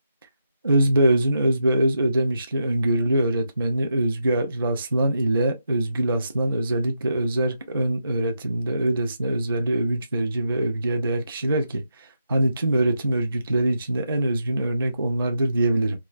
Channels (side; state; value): both; inverted; correlation -0.83